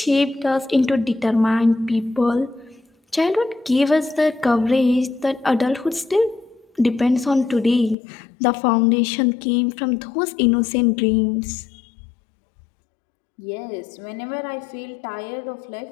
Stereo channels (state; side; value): drops out; right; at 8.0 s